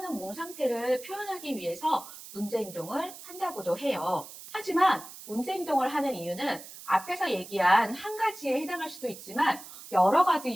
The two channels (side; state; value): right; noise; hiss, 15 dB below the sound